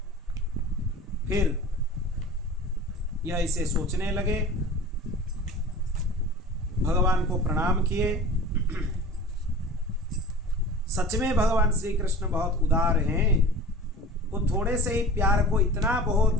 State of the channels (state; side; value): normal; both; correlation 0.39